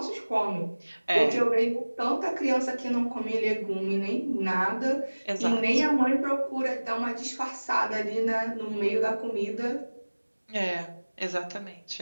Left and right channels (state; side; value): inverted; both; correlation -1.00